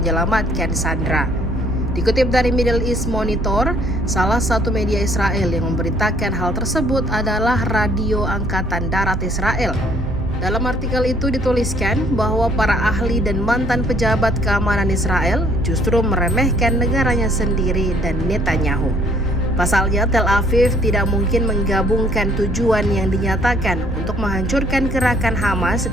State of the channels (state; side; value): normal; both; correlation 0.62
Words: sandera. Dikutip dari Middle East Monitor, salah satu media Israel yang memberitakan hal tersebut adalah Radio Angkatan Darat Israel. Dalam artikel itu dituliskan bahwa para ahli dan mantan pejabat keamanan Israel justru meremehkan negaranya sendiri dan Netanyahu. Pasalnya, Tel Aviv tidak mungkin menggabungkan tujuan yang dinyatakan untuk menghancurkan gerakan Hamas